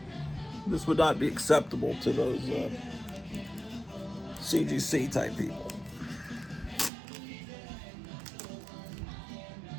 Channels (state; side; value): drops out; left; at 6.9 s